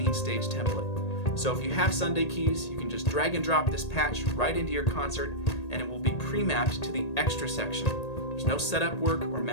template. So if you have Sunday Keys, you can just drag and drop this patch right into your concert, and it will be pre-mapped to the extra section. There's no setup work or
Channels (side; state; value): right; late; 1.8 ms